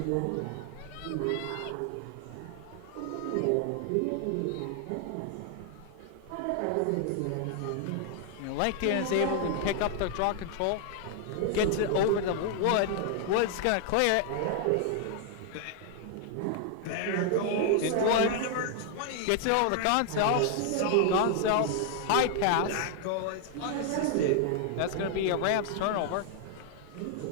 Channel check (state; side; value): different; both; correlation 0.00